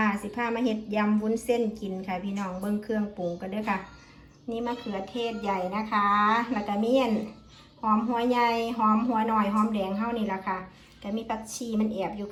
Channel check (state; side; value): identical; both; correlation 1.00